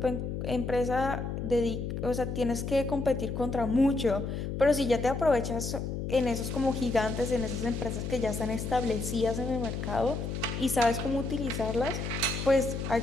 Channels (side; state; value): left; noise; hum, 4 dB below the sound